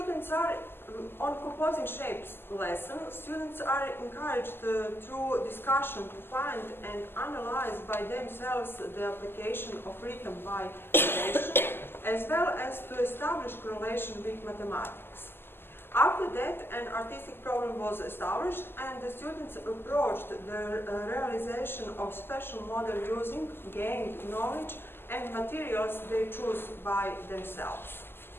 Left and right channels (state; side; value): late; right; 0.11 ms